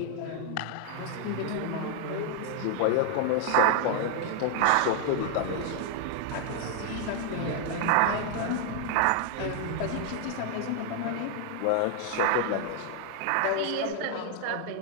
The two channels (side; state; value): both; different; correlation 0.00